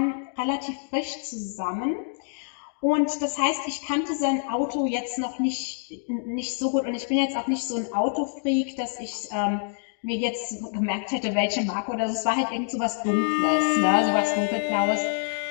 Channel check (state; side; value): silent; right; 61 dB below the other